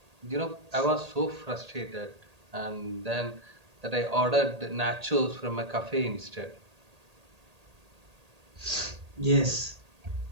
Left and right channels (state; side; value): late; left; 1.8 ms